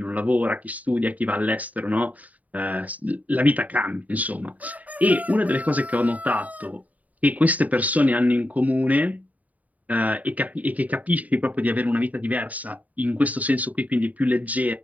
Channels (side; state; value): left; late; 0.073 ms